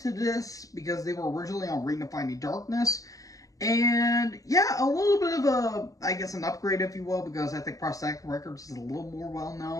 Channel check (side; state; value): right; late; 0.16 ms